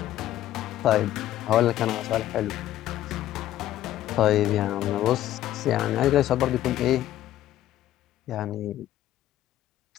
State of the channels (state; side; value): quieter; right; 13.2 dB